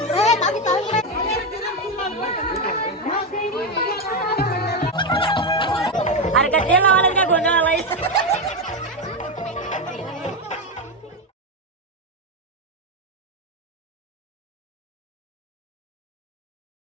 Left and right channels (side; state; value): both; normal; correlation 0.10